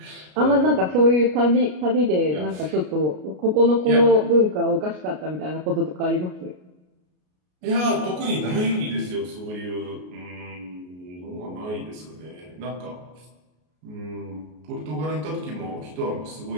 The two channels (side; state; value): left; late; 33 ms